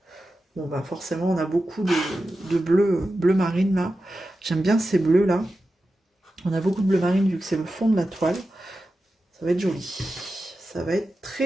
Bon, bah forcément, on a beaucoup de bleu marine, là. J'aime bien ces bleus, là. On a beaucoup de bleu marine, vu que c'est le fond de la toile. Ça va être joli. Ça va être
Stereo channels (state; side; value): normal; both; correlation 0.92